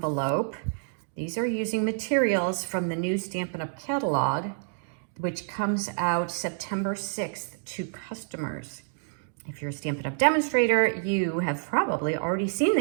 These are using materials from the new Stampin' Up! Catalog, which comes out September 6th to customers. If you're a Stampin' Up! Demonstrator, you have probably already seen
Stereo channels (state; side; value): silent; left; digital silence